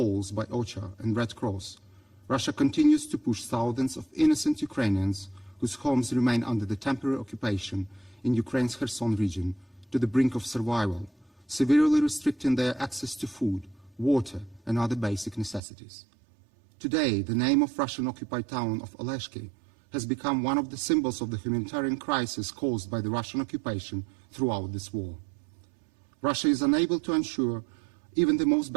by OCHA and Red Cross, Russia continues to push thousands of innocent Ukrainians whose homes remain under the temporary occupation in Ukraine's Kherson region to the brink of survival, severely restricting their access to food, water, and other basic necessities. Today, the name of Russian-occupied town of Oleshki has become one of the symbols of the humanitarian crisis caused by the Russian occupation throughout this war. Russia is unable to ensure even the most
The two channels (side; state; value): left; drops out; at 15.6 s